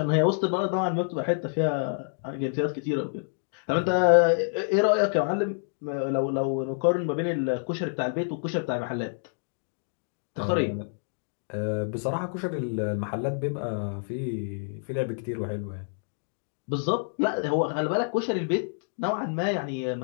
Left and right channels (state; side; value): silent; right; digital silence